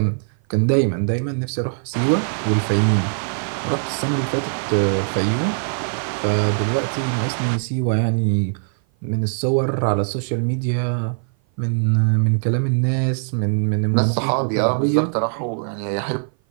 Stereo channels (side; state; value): left; silent; 56 dB below the other